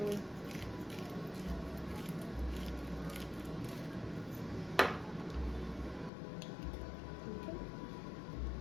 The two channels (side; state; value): right; drops out; at 6.1 s